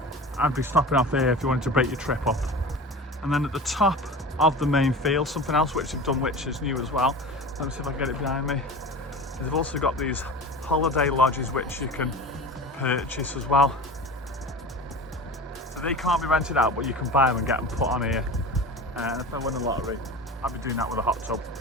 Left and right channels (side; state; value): both; normal; correlation 0.33